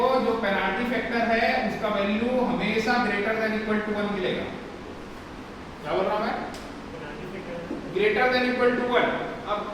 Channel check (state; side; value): identical; both; correlation 1.00